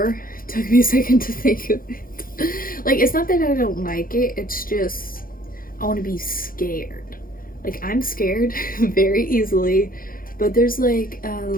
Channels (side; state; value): right; late; 0.41 ms